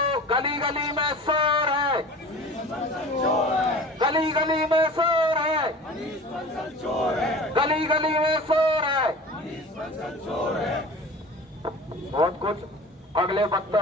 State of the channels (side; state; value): both; normal; correlation 0.39